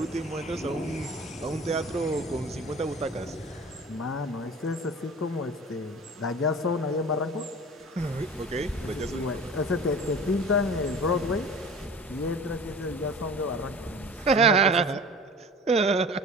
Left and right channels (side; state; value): both; normal; correlation 0.40